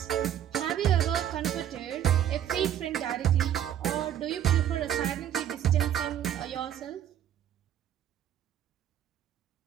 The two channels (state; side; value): quieter; left; 10.5 dB